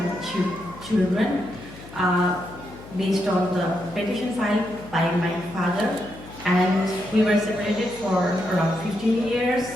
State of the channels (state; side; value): noise; left; hum, 17 dB below the sound